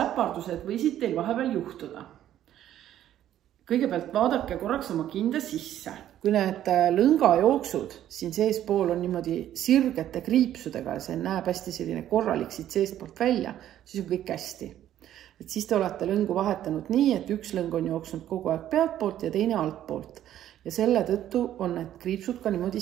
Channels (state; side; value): quieter; left; 11.8 dB